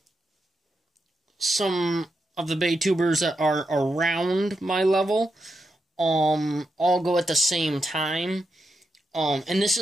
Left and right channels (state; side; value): normal; both; correlation 0.85